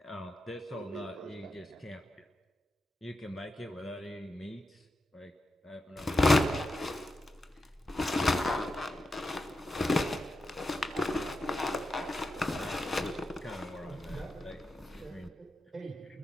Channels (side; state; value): both; normal; correlation 0.88